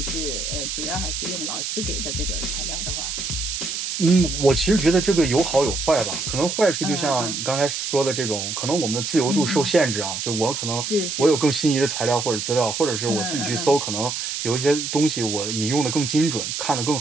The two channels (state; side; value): noise; right; hiss, 4 dB below the sound